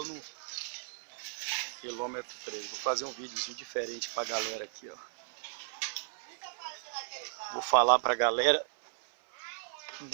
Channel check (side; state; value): left; silent; 55 dB below the other